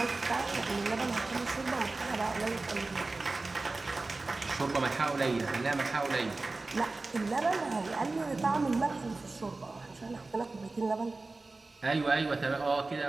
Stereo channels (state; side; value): quieter; left; 3.4 dB